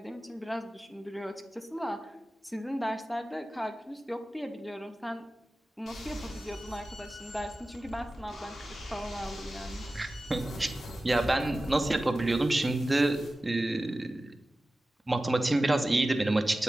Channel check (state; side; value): normal; both; correlation 0.95